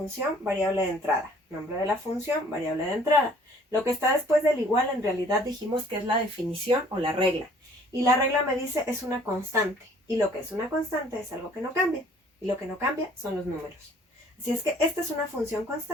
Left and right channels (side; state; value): both; normal; correlation 0.56